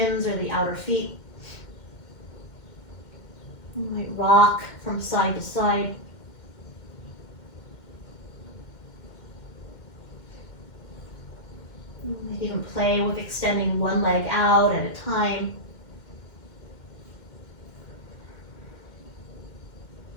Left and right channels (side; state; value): right; late; 2.1 ms